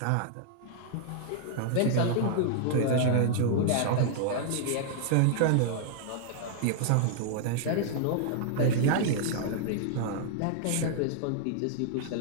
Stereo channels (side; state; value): both; different; correlation -0.01